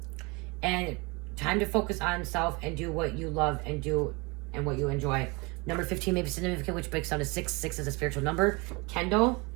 And time to focus on self and do what you love and do and what you enjoy. Number 15 may be significant, which breaks down to 6. 6 is a spiritual number. Kendall.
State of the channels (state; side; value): quieter; left; 27.4 dB